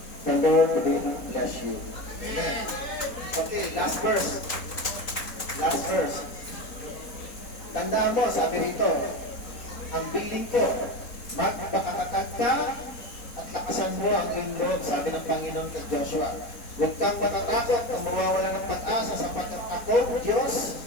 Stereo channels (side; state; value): right; late; 4.2 ms